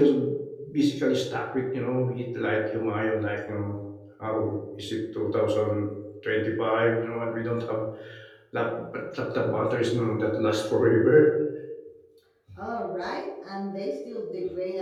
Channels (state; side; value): identical; both; correlation 1.00